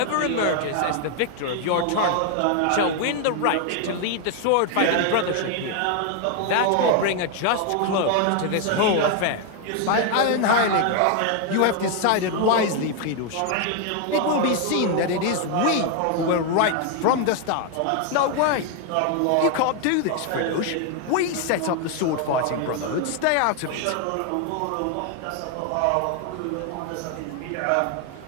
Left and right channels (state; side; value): different; both; correlation 0.01